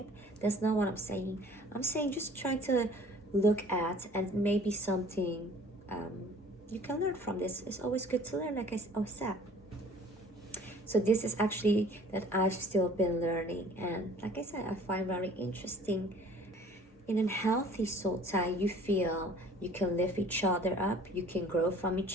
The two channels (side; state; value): both; normal; correlation 0.51